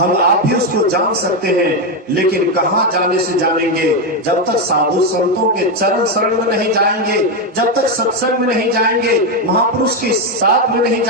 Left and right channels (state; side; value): normal; both; correlation 0.07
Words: आप भी उसको जान सकते हैं, लेकिन कहां जाने से जानेंगे? जब तक साधु संतों के चरण शरण में नहीं जाएंगे, जब तक सत्संग में नहीं जाएंगे, महापुरुष के साथ में नहीं